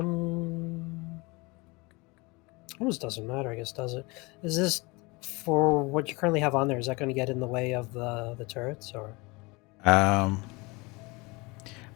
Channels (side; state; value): right; quieter; 25.7 dB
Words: Almost doesn't matter, I guess, does it? Is this for what you currently have on there? Is that going to get in the way of the turrets, or? Well,